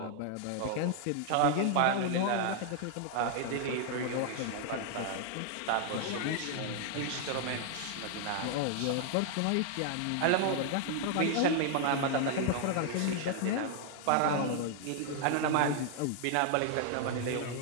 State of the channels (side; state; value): both; different; correlation 0.00